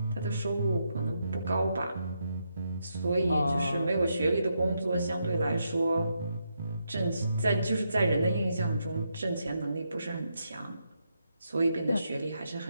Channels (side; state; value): both; inverted; correlation -0.81